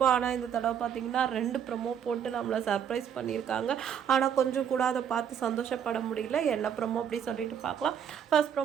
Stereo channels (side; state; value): left; quieter; 8.5 dB